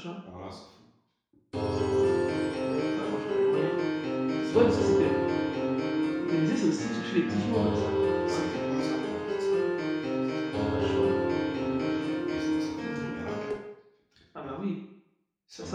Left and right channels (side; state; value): both; identical; correlation 1.00